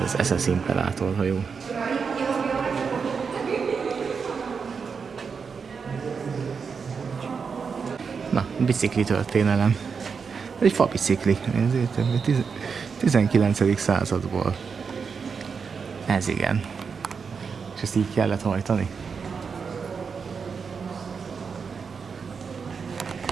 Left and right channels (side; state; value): left; quieter; 5.7 dB